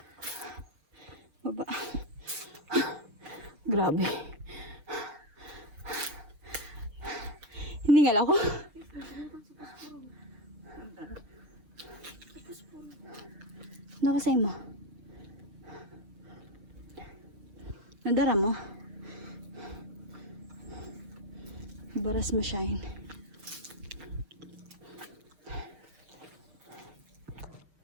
Baba. Grabe. Hindi nga ako. Nakasay mo. Nadara mo. Baras mo shine.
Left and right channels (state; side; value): late; left; 6.5 ms